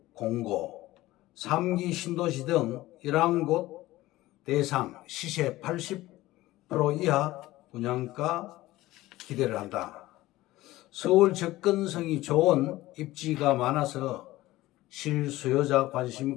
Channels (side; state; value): right; quieter; 17.3 dB